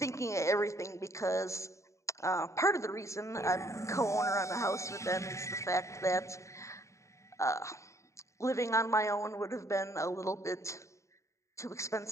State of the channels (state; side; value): late; right; 0.14 ms